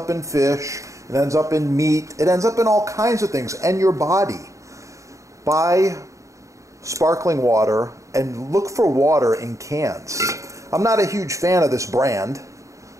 in fish, it ends up in meat, it ends up in all kinds of things, and your body. Buy sparkling water and look for water in cans. I'm not a huge fan of this brand,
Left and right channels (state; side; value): late; left; 0.15 ms